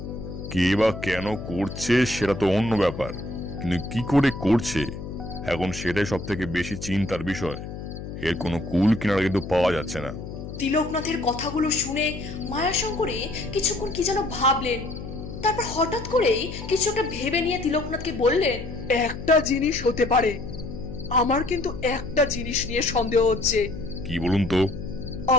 কে বা কেন করছে সেটা তো অন্য ব্যাপার, কিন্তু কি করে করছে এখন সেটাই সব থেকে বেশি চিন্তার বিষয়। এর কোনো কুল কিনারা কিন্তু পাওয়া যাচ্ছে না। তিলকনাথের কথাগুলো শুনে মায়াশঙ্করী কিছুক্ষণ কি যেন ভাবলেন। তারপর হঠাৎ করেই কিছু একটা ভেবে নিয়ে তিলকনাথকে বললেন, একটা জিনিস হতে পারে। আমার কিন্তু একটা জিনিস নিয়ে সন্দেহ হচ্ছে। কি বলুন তো?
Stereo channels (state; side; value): noise; left; hum, 9 dB below the sound